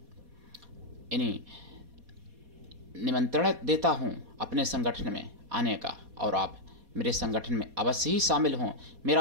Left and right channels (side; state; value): left; late; 4.2 ms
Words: निमंत्रण देता हूं अपने संगठन में आने का, और आप मेरे संगठन में अवश्य ही शामिल हों।